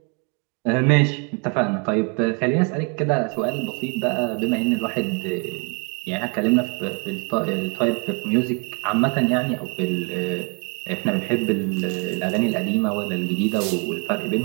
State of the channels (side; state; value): left; quieter; 35.3 dB